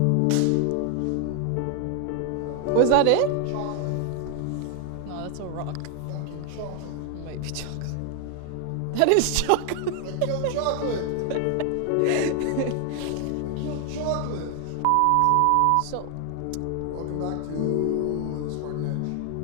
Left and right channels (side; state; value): both; different; correlation 0.00